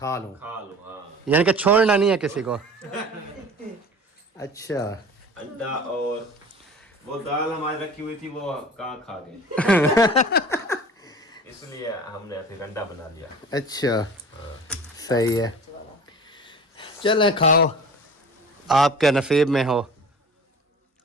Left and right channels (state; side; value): normal; both; correlation 0.41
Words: लूँ, खा लो। हाँ, यानी कि छोड़ना नहीं है किसी को। अच्छा, अंडा और वो दाल हमारी रखी हुई थी, वो कहाँ खा गए। इसलिए हमने फिर अंडा बना लिया। अच्छा, सही है। चलें खाओ, आपके नसीब में हो